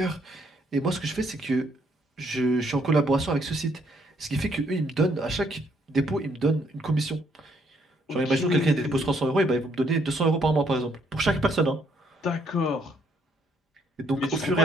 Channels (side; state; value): both; normal; correlation 0.70